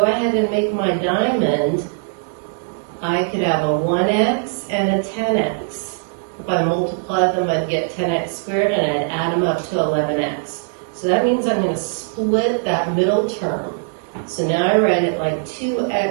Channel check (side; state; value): left; silent; digital silence